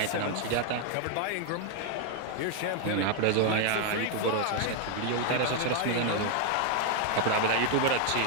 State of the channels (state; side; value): different; both; correlation 0.01